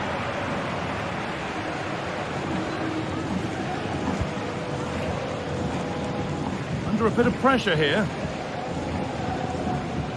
Under a bit of pressure here.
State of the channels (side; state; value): both; identical; correlation 1.00